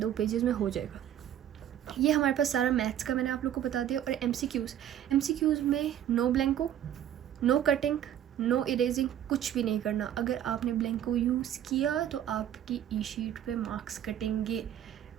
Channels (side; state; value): left; quieter; 10.8 dB